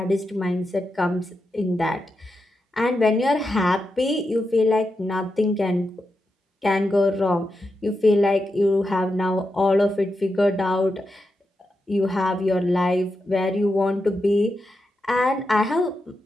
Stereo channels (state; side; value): normal; both; correlation 0.87